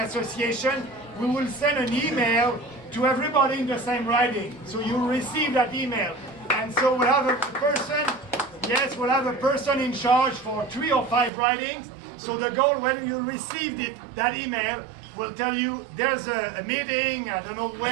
we will send an email to everybody in the same riding. So you'll receive that email. And so we'll have a person, yes, we'll have a person in charge for 3 or 5 ridings. So the goal, when you receive that email, will tell you there's a meeting, I don't know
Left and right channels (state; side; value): drops out; left; at 11.3 s